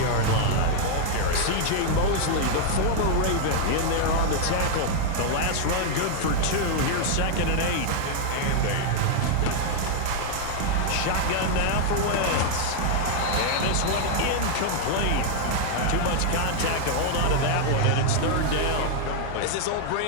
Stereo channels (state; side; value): different; both; correlation 0.00